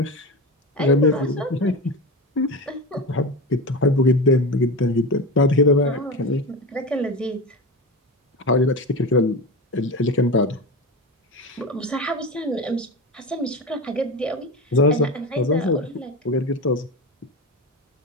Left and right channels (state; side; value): normal; both; correlation 0.23